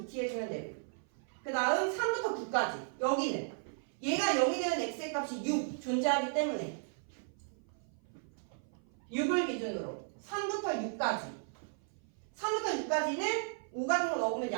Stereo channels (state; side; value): silent; left; 54 dB below the other